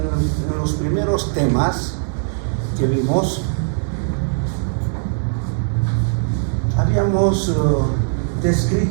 los primeros temas que vimos, habíamos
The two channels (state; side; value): silent; left; digital silence